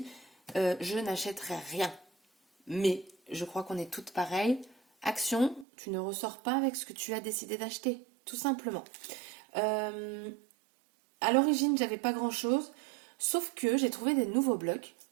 je n'achèterai rien. Mais je crois qu'on est toutes pareilles, action, tu ne ressors pas avec ce que tu as décidé d'acheter, tout simplement. À l'origine j'avais pas grand chose, sauf que j'ai trouvé des nouveaux blocs.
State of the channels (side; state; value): left; drops out; at 5.7 s